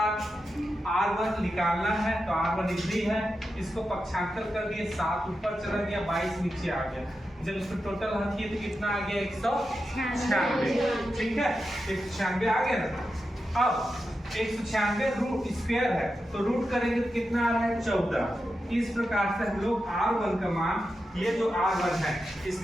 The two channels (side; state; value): both; normal; correlation 0.89